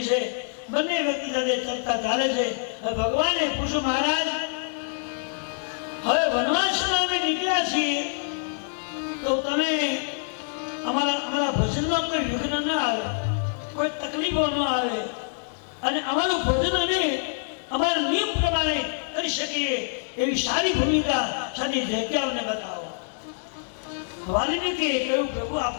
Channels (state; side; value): silent; right; 61 dB below the other